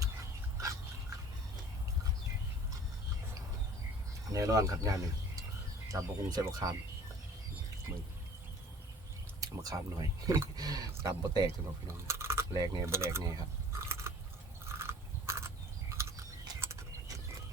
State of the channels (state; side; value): normal; both; correlation 0.49